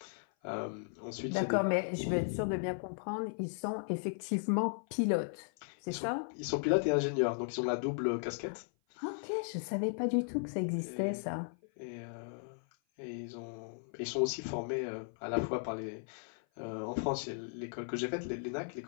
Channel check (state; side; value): silent; right; 54 dB below the other